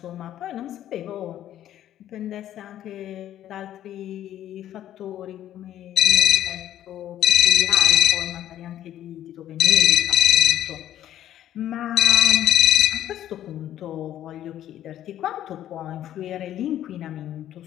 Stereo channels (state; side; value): quieter; right; 11.9 dB